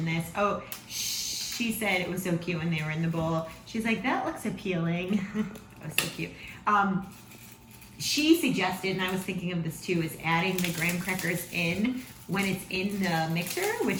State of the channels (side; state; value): both; identical; correlation 1.00